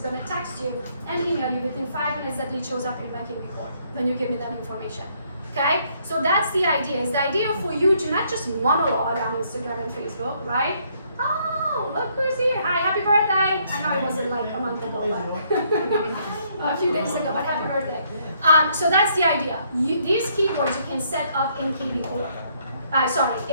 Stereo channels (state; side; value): inverted; both; correlation -0.69